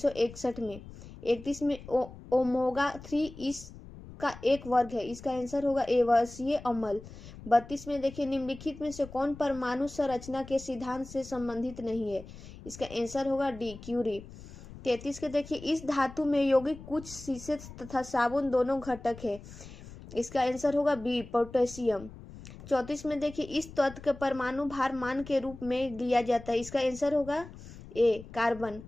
में। 31 में, ओमेगा 3 इसका एक वर्ग है, इसका आंसर होगा ए वर्षीय अम्ल। 32 में देखिए, निम्नलिखित में से कौन परमाणु संरचना के सिद्धांत से संबंधित नहीं है, इसका आंसर होगा डी क्यूरी। 33 के देखिए, इस धातु में यौगिक कुछ शीशे तथा साबुन दोनों घटक है, इसका आंसर होगा बी पोटेशियम। 34 में देखिए, इस तत्व के परमाणु भार मान के रूप में लिया जाता है, इसका आंसर होगा ए कार्बन।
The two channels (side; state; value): left; noise; rumble, 16 dB below the sound